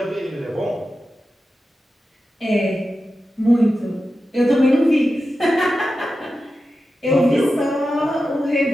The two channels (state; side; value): normal; both; correlation 0.92